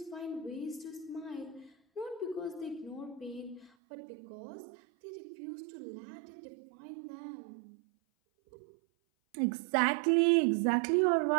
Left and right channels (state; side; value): drops out; left; at 3.7 s